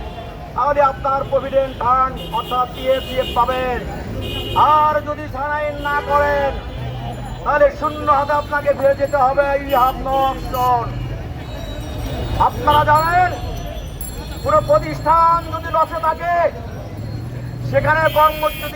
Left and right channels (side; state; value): both; identical; correlation 1.00